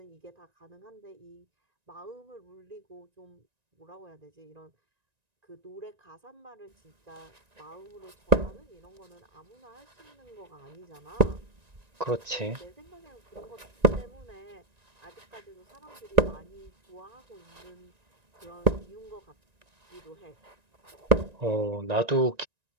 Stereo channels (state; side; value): late; left; 1.9 ms